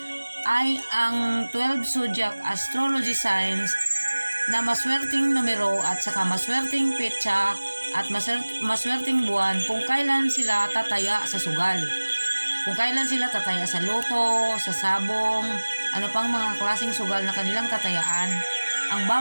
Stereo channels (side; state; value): both; inverted; correlation -1.00